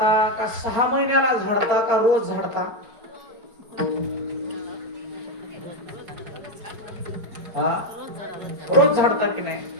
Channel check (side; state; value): left; late; 4.4 ms